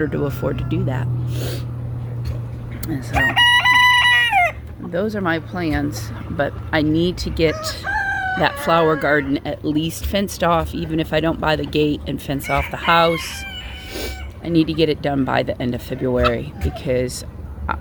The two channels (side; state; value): both; identical; correlation 1.00